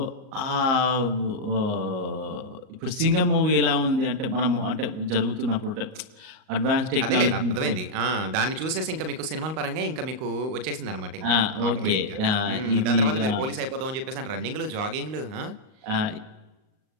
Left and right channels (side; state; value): left; late; 38 ms